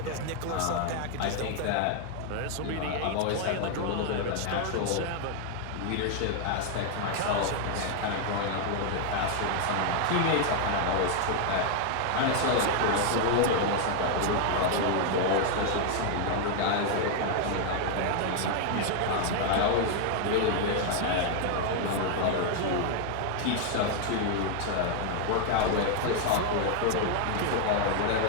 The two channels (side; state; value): both; different; correlation 0.00